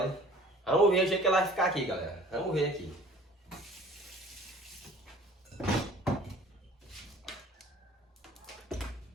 Vamos ver o jeito que ela vai ficar aqui, galera. Vamos ver aqui.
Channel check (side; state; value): both; normal; correlation 0.49